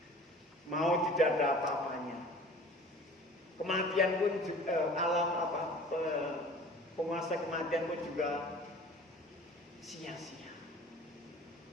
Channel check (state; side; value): normal; both; correlation 0.45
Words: Maut tidak ada apa-apanya. Kematian pun penguasa kematian pun juga sia-sia.